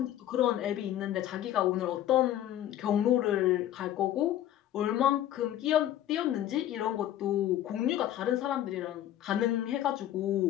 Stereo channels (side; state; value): right; quieter; 12.1 dB